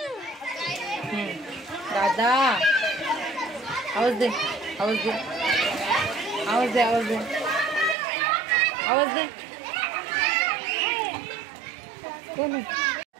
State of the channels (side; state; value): left; drops out; at 8.0 s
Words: दादा आवाज दे, आवाज दे, आवाज दे, आवाज दे, आवाज दे. कोण